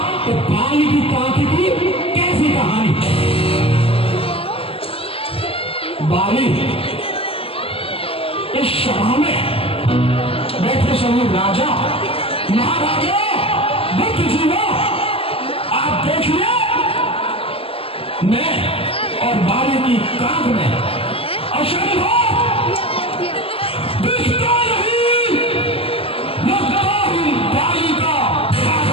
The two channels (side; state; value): right; late; 0.27 ms